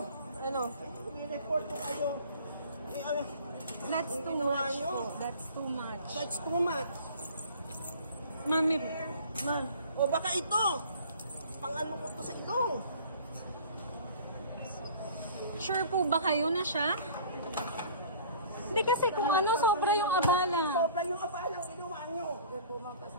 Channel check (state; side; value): inverted; both; correlation -0.46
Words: Ano? May report ko kayo. That's too Ginawa much nyo. po. That's too much. That's too much. Mami, Ma, o baka ito. Pang-ano ko to sa ilong. sure po ba kayo na siya? Hindi kasi kung ano, sobra yung abala. Sobra yung abalang ginawa nyo.